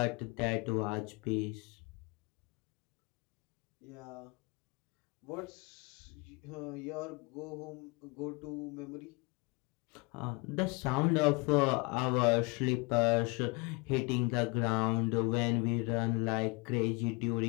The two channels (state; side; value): quieter; right; 27.3 dB